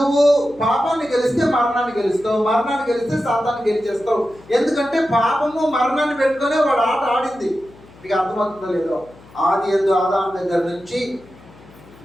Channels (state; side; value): noise; left; hum, 24 dB below the sound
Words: పాపాన్ని గెలిస్తే మరణాన్ని గెలుస్తావు, మరణాన్ని గెలిస్తే సాతాన్ని గెలిచేస్తావు. ఎందుకంటే పాపము మరణాన్ని పెట్టుకునే వాడు ఆట ఆడింది. మీకు అర్థమవుతుందో లేదో, ఆది యందు ఆదాము దగ్గర నుంచి